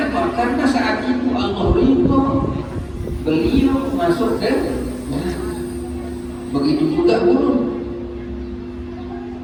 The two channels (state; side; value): identical; both; correlation 1.00